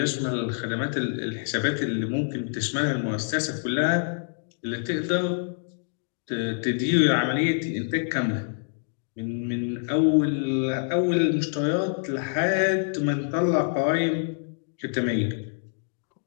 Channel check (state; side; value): silent; right; digital silence